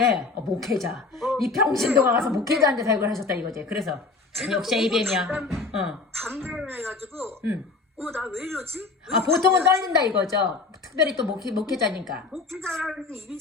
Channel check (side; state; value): right; quieter; 4.0 dB